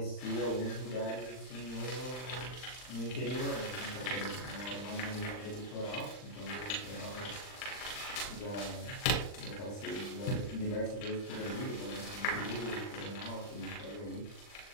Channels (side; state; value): right; late; 39 ms